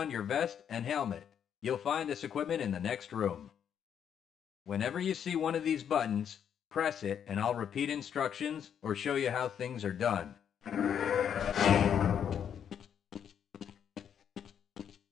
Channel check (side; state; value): right; quieter; 8.5 dB